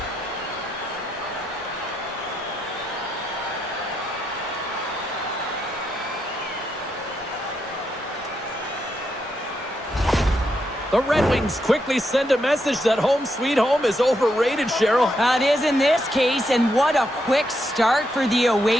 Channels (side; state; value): both; normal; correlation 0.81